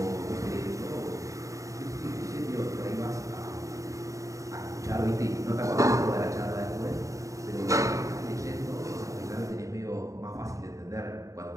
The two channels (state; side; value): late; left; 0.16 ms